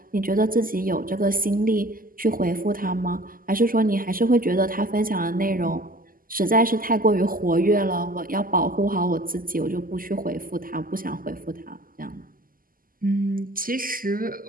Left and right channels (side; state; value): left; late; 0.41 ms